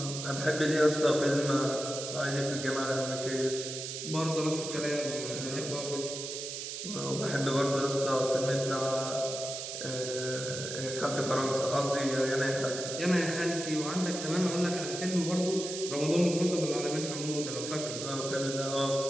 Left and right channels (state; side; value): noise; right; hiss, 6 dB below the sound